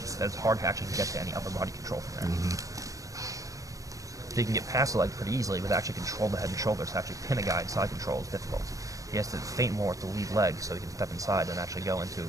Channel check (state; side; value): late; left; 0.16 ms